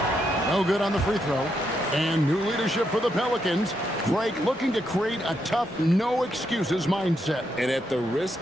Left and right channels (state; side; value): normal; both; correlation 0.80